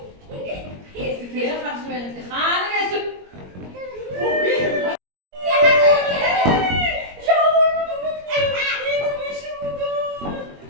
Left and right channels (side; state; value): left; late; 21 ms